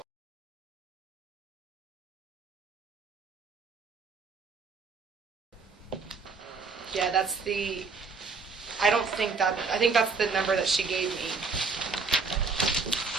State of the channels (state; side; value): quieter; left; 4.7 dB